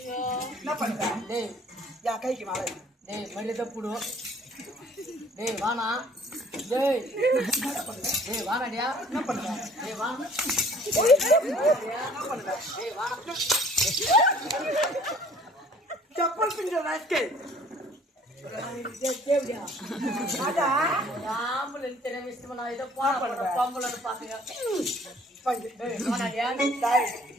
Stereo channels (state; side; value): normal; both; correlation 0.54